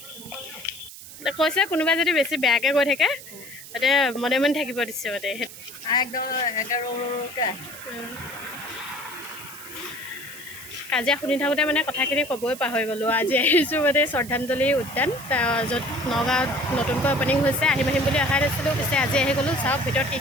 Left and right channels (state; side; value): noise; right; hiss, 15 dB below the sound